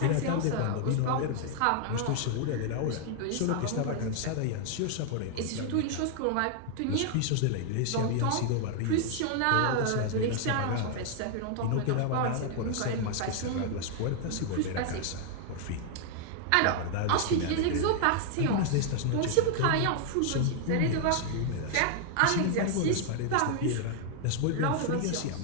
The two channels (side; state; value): both; different; correlation 0.00